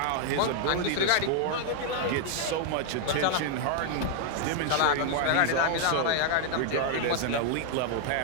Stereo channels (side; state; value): both; different; correlation 0.00